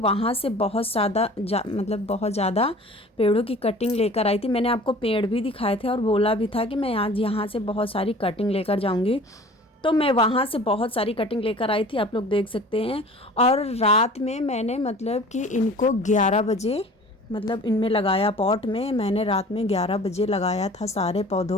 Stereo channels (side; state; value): both; normal; correlation 0.45